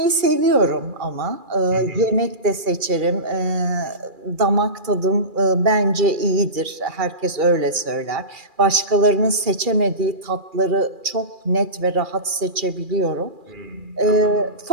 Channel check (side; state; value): left; late; 2.4 ms